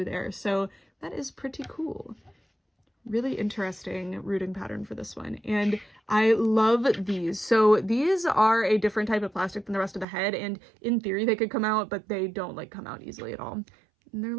there, so that is pretty cool. Really interesting rooting pattern for this one, and I love these. So these are a different type of plastic than the rest of the head, and in theory they could come out, but they don't like come out easily at all. And they're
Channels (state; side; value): drops out; left; at 10.1 s